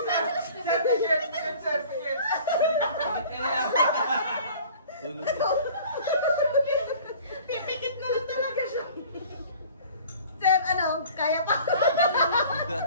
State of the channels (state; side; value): inverted; both; correlation -0.47